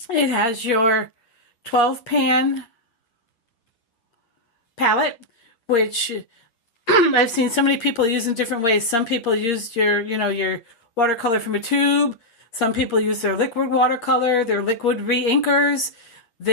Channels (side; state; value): right; late; 8.8 ms